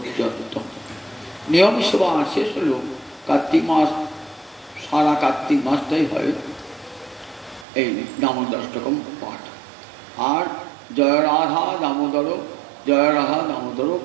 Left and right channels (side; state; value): left; drops out; at 7.7 s